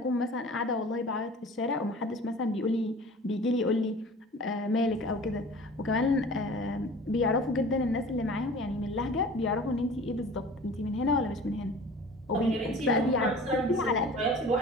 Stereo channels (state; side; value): normal; both; correlation 0.42